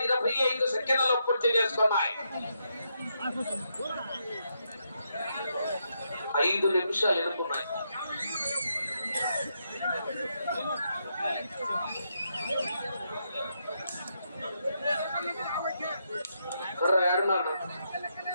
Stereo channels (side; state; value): both; inverted; correlation -0.80